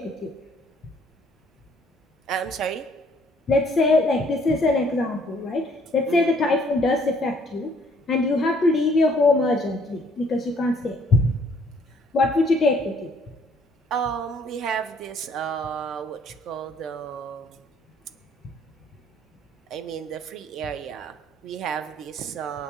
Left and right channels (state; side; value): normal; both; correlation 0.63